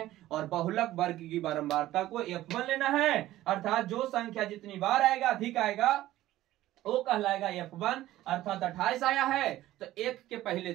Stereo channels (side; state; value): left; quieter; 15.0 dB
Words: और बहुलक वर्ग की बारंबारता को F1 लेना है, अर्थात जो संख्या जितनी बार आएगा अधिक आएगा वो कहलाएगा F1, अर्थात 28 आया है तो 1 के पहले